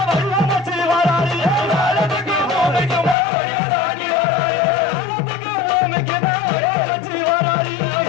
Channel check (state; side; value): drops out; right; at 3.2 s